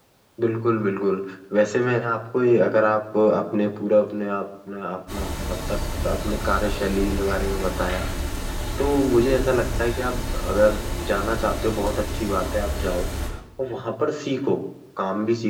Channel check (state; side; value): identical; both; correlation 1.00